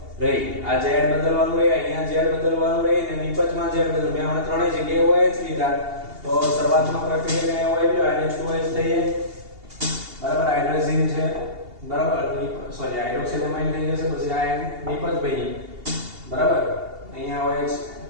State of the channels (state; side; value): late; left; 2.8 ms